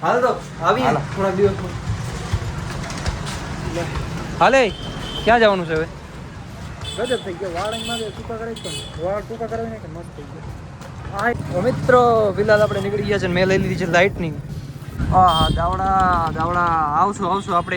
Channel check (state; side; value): identical; both; correlation 1.00